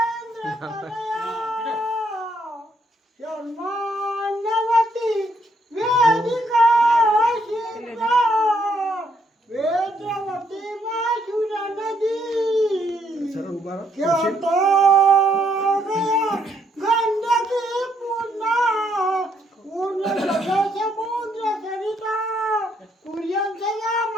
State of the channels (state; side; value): normal; both; correlation 0.72